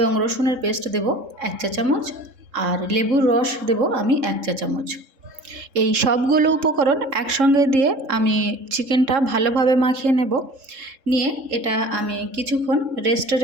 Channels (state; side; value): late; left; 3.7 ms